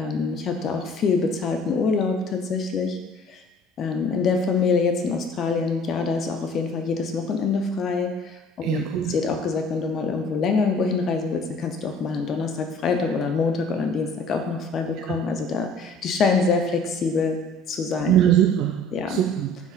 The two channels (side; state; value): both; normal; correlation 0.50